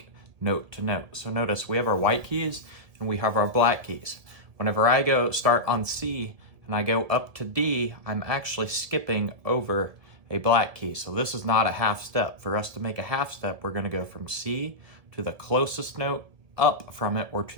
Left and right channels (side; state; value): left; late; 1.7 ms